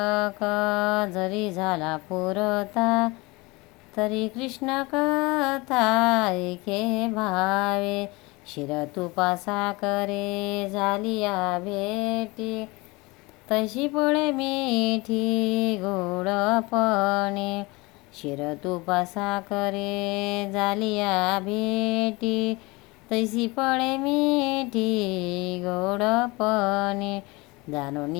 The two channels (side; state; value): right; quieter; 24.2 dB